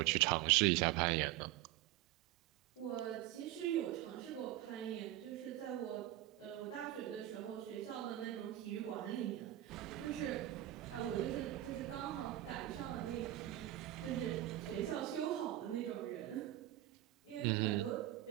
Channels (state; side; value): quieter; left; 14.7 dB